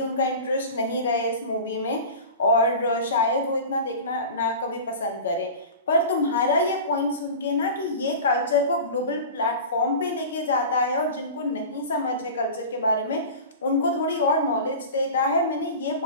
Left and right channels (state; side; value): inverted; both; correlation -0.33